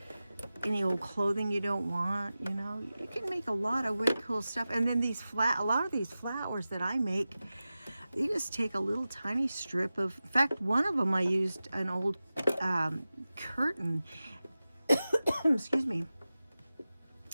any old clothing you don't want, you know, you can make a lot of really cool stuff. And then a lot of these flowers that I make, you just take a little tiny strip of, in fact, one of them I used an old curtain, excuse me,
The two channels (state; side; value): inverted; both; correlation -0.95